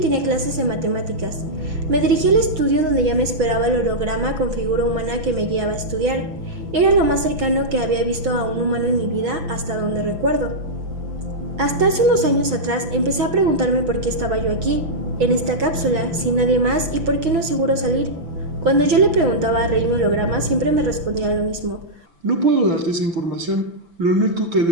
clases de matemáticas. Me dirigí al estudio donde ya me esperaba el holograma con figura humana que me guiaba a estudiar. Era lo más cercano que había visto a un humano en mi vida hasta donde recuerdo. Hasta hace unos años atrás empecé a preguntarme por qué estaba yo aquí, en esta cápsula, sin nadie más, y por qué no es seguro salir. Cuando yo le preguntaba a Rey mi holograma, siempre me respondía lo mismo. No puedo darte esa información. Lo único que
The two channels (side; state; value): left; late; 6.0 ms